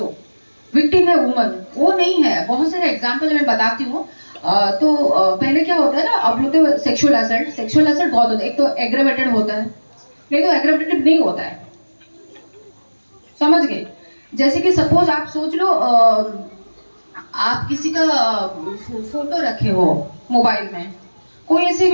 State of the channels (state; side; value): inverted; both; correlation -1.00